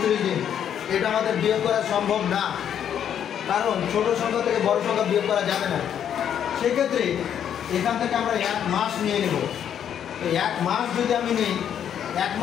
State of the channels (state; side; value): quieter; right; 9.2 dB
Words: দিন। এটা আমাদের বিয়োগ করা সম্ভব না, কারণ ছোট সংখ্যা থেকে বড় সংখ্যা বিয়োগ করা যাবে না। সেক্ষেত্রে এখান থেকে আমরা 1 মাস নিয়ে নেব। এই 1 মাস যদি আমি নিই, 1